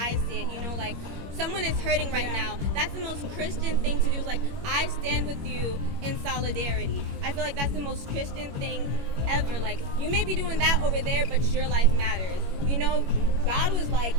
see it. You know, like someone is hurting right now. That's the most Christian thing to do. Is like I stand with you in solidarity. I feel like that's the most Christian thing ever. Like you may be doing that over there, but your life matters. You know, God was like,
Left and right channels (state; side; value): late; left; 21 ms